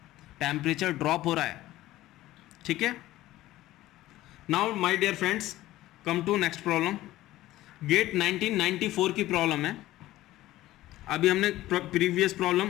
टेम्परेचर ड्रॉप हो रहा है, ठीक है। Now my dear friends, come to next problem. GATE 1994 की प्रॉब्लम है। अभी हमने previous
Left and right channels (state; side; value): quieter; right; 15.9 dB